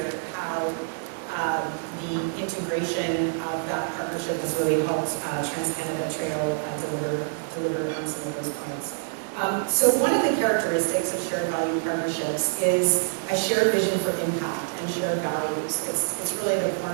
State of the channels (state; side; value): silent; left; digital silence